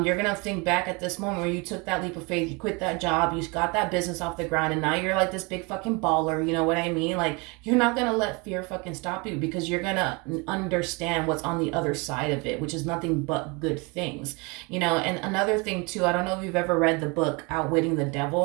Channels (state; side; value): quieter; left; 28.8 dB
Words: you're gonna think back at this moment where you took that leap of faith, you quit that job, you got that business off the ground, and now you're like this big fucking baller. You know what I mean? Like, you're not gonna let fear fucking stop you, because you're gonna understand what's on the other side of it, which is nothing but good things. You know, and another thing too, I don't know if you've ever read the book Outwitting the